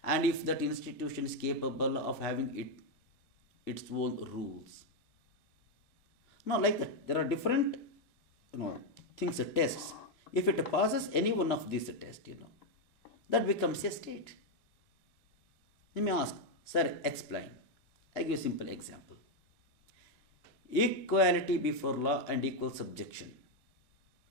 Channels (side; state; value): both; normal; correlation 0.03